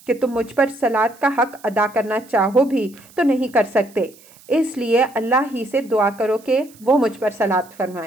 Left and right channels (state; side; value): noise; right; hiss, 25 dB below the sound